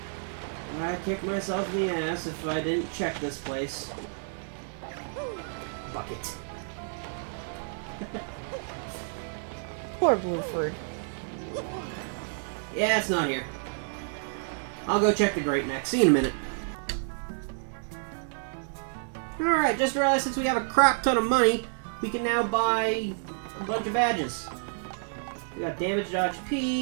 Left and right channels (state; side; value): silent; left; 58 dB below the other